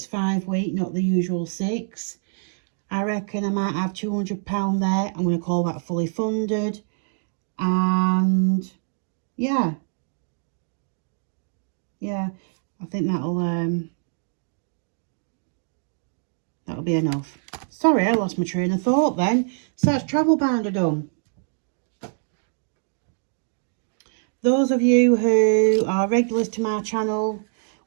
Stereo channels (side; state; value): left; silent; digital silence